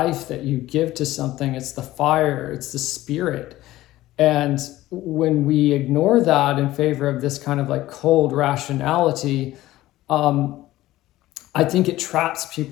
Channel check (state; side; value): quieter; right; 16.1 dB